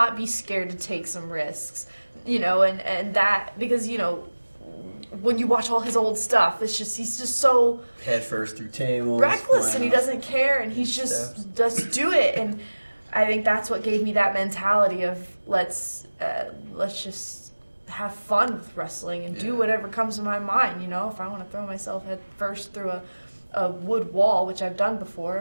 be scared to take some risks, and that, because, when you watch all his old stuff, he's just so head first through tables, reckless, and he doesn't care, and he's just do it. And I think that's what gave me that mentality of let's just have fun with wrestling and do whatever comes to my mind. If I want to throw myself head first through a wood wall, which I've done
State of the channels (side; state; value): both; inverted; correlation -1.00